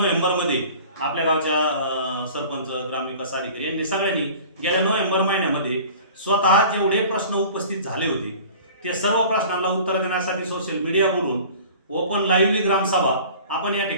आपल्या गावच्या सरपंच, ग्रामविकास अधिकारी यांनी सगळ्यांनी गेल्या नोव्हेंबर महिन्यामध्ये स्वतः जेवढे प्रश्न उपस्थित झाले होते त्या सर्व प्रश्नांना उत्तर देण्यासाठी सोशल मीडिया बोलून ओपन लाईव्हली ग्रामसभा आपण या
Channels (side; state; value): both; inverted; correlation -0.44